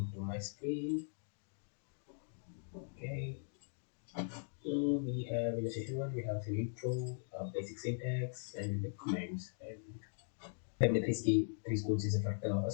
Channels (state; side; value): silent; right; digital silence